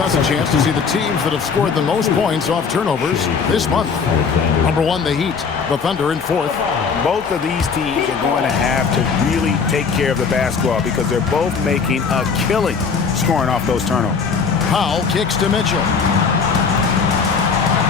a chance to see the teams that have scored the most points off turnovers this month. Number 1, the Heat. The Thunder in 4th. Both of these teams are going to have to really take care of the basketball because they're both making a killing scoring off those turnovers. Powell kicks to Mitchell.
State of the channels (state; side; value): quieter; right; 5.6 dB